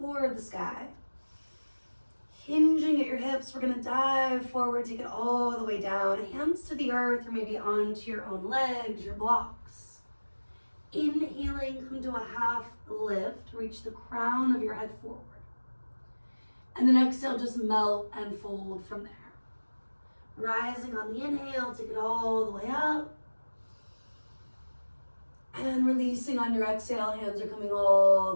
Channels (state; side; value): inverted; both; correlation -1.00